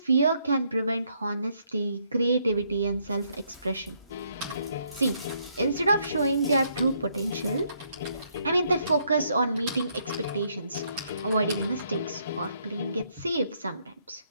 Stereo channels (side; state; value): both; inverted; correlation -0.72